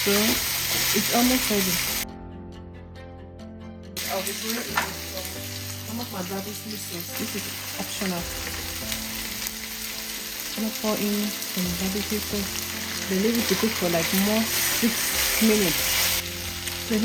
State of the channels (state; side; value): identical; both; correlation 1.00